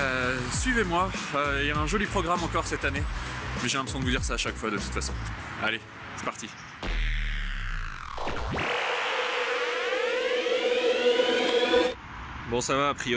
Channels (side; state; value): both; identical; correlation 1.00